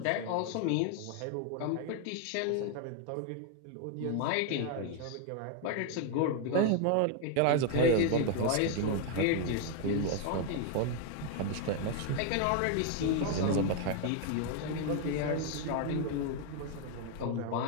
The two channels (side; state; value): both; different; correlation 0.01